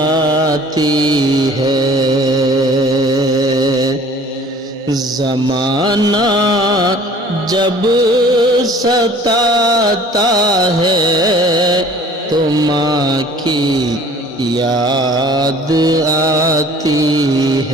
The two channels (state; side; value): normal; both; correlation 0.50